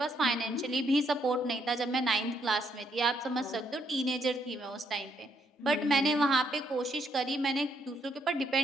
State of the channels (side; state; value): both; normal; correlation 0.73